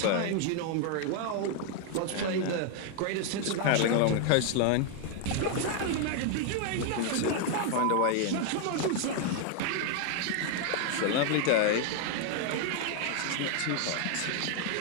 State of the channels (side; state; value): both; different; correlation 0.00